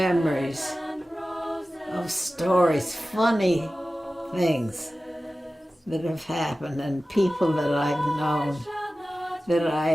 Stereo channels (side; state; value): both; normal; correlation 0.95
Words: of stories, funny things that have happened and people that I've known, that